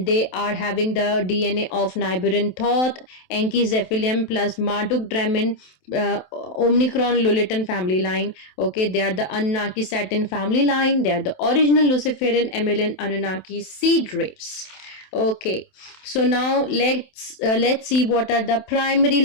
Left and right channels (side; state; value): right; late; 27 ms